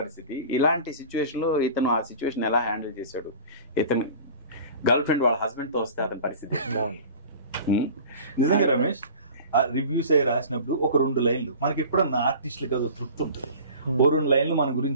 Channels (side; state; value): both; inverted; correlation -0.40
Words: పరిస్థితి. ఇలాంటి సిచ్యువేషన్ లో ఇతను ఆ సిచ్యువేషన్ ఎలా హ్యాండిల్ చేశాడు, ఇతను గర్ల్ ఫ్రెండ్ వాళ్ళ హస్బెండ్ తో వస్తే అతని పరిస్థితి. నిజంగా రమేష్ రివ్యూస్ అయ్యి రాసినప్పుడు ఒక 2 లైన్లు మనకి ఎప్పుడన్నా ఆర్టిస్టులకి అది తృప్తి ఉంటుంది. ఓ 2 లైన్లు మన